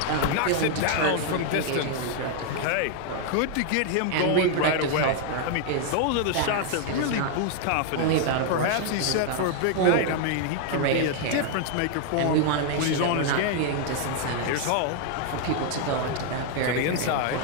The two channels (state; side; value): different; both; correlation 0.00